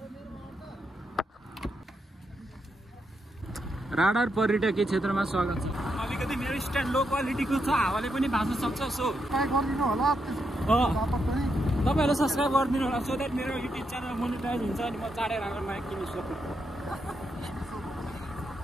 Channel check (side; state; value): both; normal; correlation 0.82